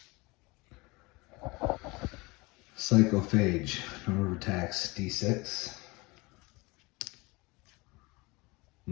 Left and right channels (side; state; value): right; quieter; 24.4 dB